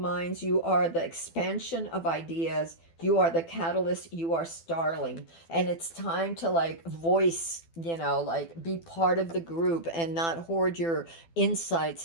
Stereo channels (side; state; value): right; late; 12 ms